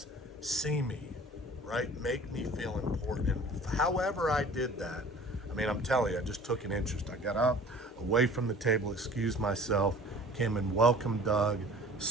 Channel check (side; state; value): both; normal; correlation 0.46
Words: "See me," right? Make me feel important. And however I did that, I'm telling you, I just took an interest. I got up, away from the table, excused myself, came and welcomed Doug,